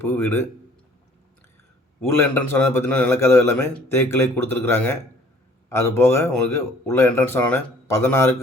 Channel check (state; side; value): normal; both; correlation 0.55